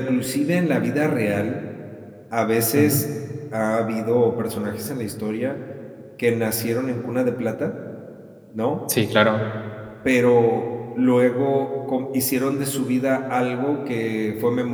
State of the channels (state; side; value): identical; both; correlation 1.00